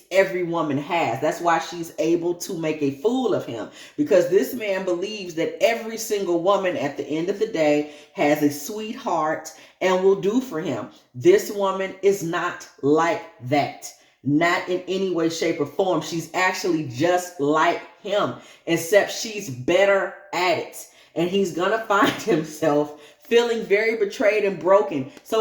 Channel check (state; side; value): identical; both; correlation 1.00